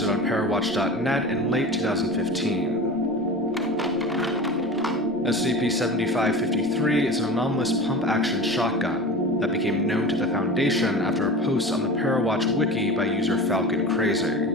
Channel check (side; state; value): both; normal; correlation 0.33